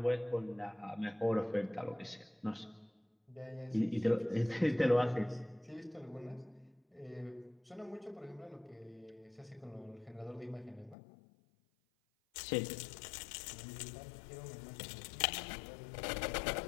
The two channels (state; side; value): drops out; right; at 11.0 s